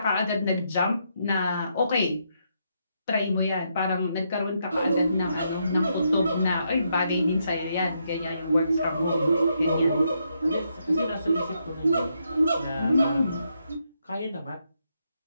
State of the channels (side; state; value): both; inverted; correlation -0.79